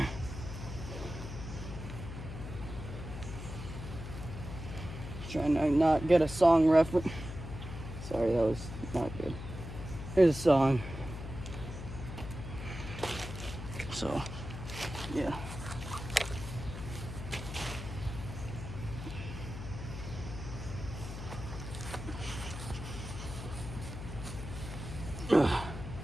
Trying to not get a song reference. Sorry, that was not good. Here's a song. So, yeah. Ugh.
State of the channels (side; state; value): left; noise; hum, 8 dB below the sound